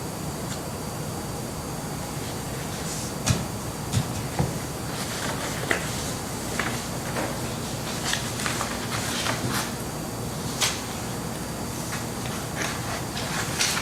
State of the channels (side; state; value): both; identical; correlation 1.00